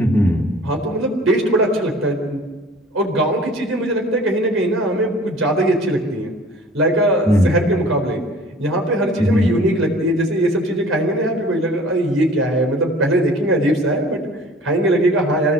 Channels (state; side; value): normal; both; correlation 0.48